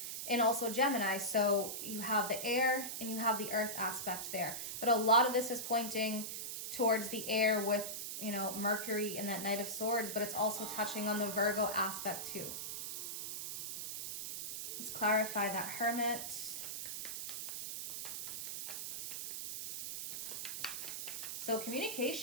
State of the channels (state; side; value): noise; right; hiss, 5 dB below the sound